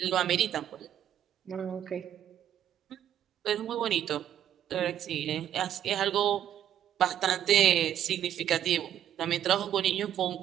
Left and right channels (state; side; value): quieter; left; 10.6 dB